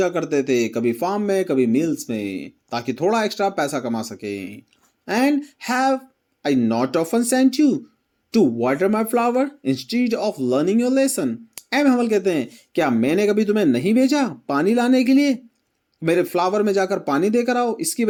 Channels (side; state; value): both; identical; correlation 1.00